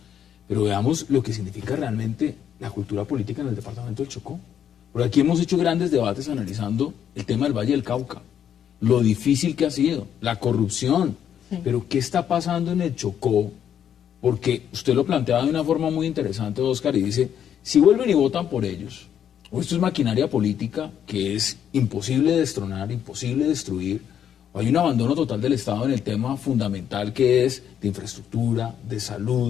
pero veamos lo que significa realmente la cultura política en el departamento del Chocó. Porque aquí hemos hecho grandes debates analizando el tema del Valle del Cauca, lo difícil que ha sido, la corrupción, pero ¿qué está pasando en el Chocó? Porque usted lo planteaba de una forma muy interesante, Oscar, y dice, Si vuelven y votan por ellos, o esto es maquinaria política que es imposible de destronar, imposible de destruir, o hay un abandono total del Estado en el tema fundamental que es de infraestructura, de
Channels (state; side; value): quieter; right; 9.2 dB